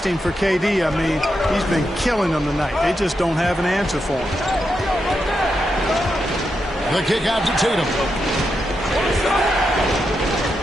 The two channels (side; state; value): both; normal; correlation 0.85